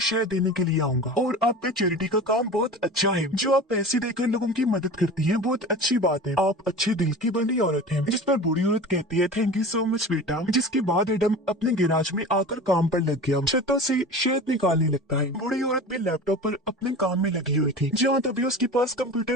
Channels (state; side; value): normal; both; correlation 0.35